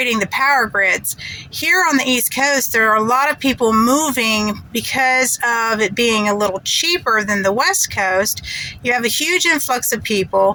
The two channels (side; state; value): both; identical; correlation 1.00